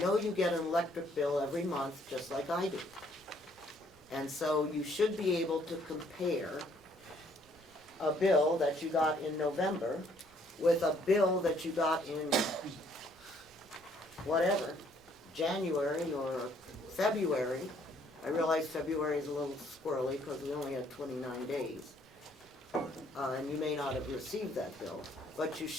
you get an electric bill every month, just like I do. And so you should be able to compare a bill that you got in November with a bill that you got in whatever, January or February. I realize February is a little squirrely because we only had 29 days. And you may not have received that bill, but you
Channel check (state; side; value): noise; right; rumble, 29 dB below the sound